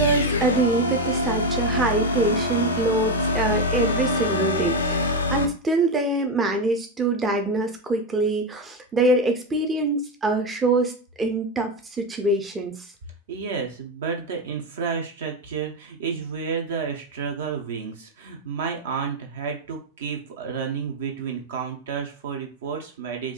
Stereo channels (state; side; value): normal; both; correlation 0.10